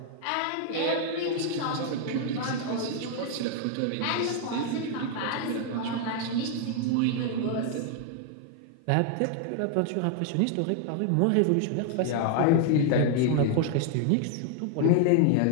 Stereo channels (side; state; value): both; different; correlation 0.00